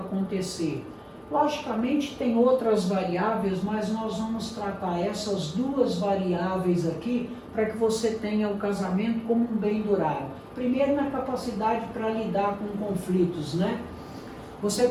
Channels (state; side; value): identical; both; correlation 1.00